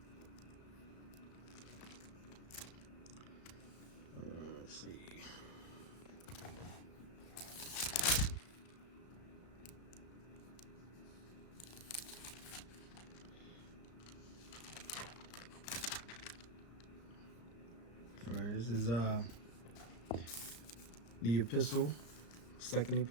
Let's see. All right, this is the epistle, second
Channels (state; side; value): late; right; 34 ms